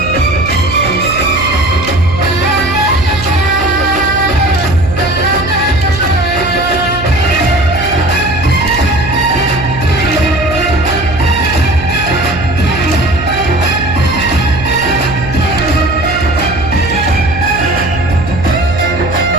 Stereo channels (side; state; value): right; noise; hum, 9 dB below the sound